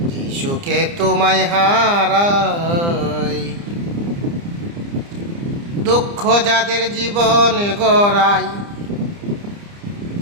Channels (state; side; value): late; left; 30 ms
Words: যে সুখে তোমায় হারাই। দুঃখ যাদের জীবন গড়ায়,